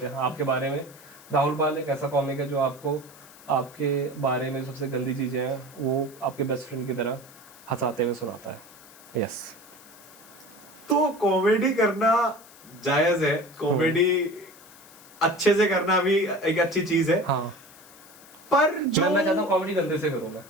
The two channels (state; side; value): noise; left; hiss, 22 dB below the sound